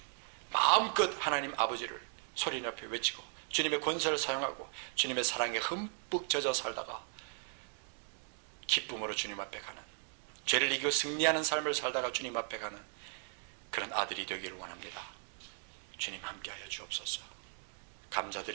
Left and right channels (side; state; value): left; silent; 53 dB below the other